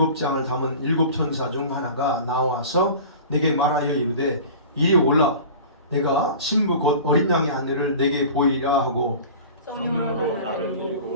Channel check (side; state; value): both; inverted; correlation -0.38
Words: 담은 7 천사 중 하나가 나와서 내게 말하여 이르되 이리 올라 내가 신부 곧 어린 양의 아내를 내게 보이리라 하고 성령으로 나를